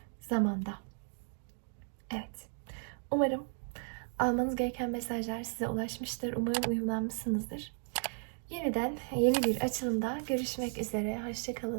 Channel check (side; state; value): left; silent; 54 dB below the other